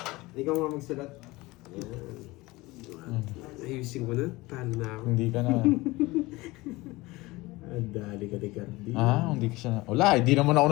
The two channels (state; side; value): quieter; right; 21.2 dB